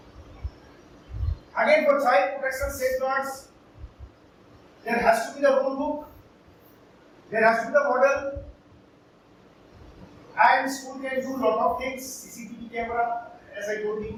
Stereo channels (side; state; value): both; identical; correlation 1.00